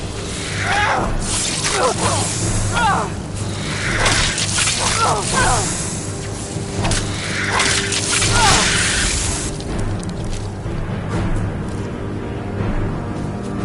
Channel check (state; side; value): identical; both; correlation 1.00